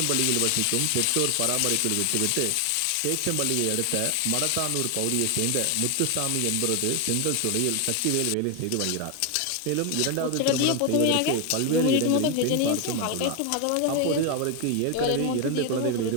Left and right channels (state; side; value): different; both; correlation 0.01